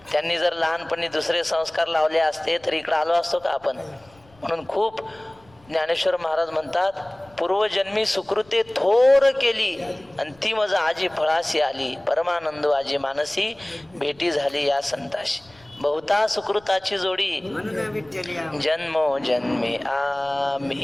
त्यांनी जर लहानपणी दुसरे संस्कार लावले असते तर इकडं आलो असतो का आपण. म्हणून खूप ज्ञानेश्वर महाराज म्हणतात पूर्वजन्मी सुकृते थोर केली आणि ती मज आजी फळाशी आली, परमानंद आजी मानसी भेटी झाली या संताशी. बहुता सुकृताची जोडी जन्मो जन्मे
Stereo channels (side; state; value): left; noise; rumble, 29 dB below the sound